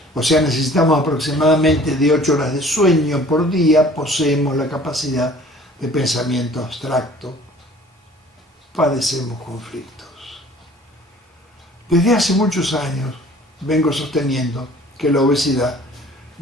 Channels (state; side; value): normal; both; correlation 0.50